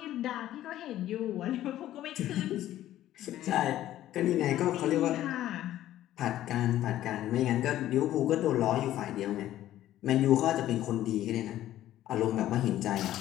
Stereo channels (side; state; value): right; quieter; 13.3 dB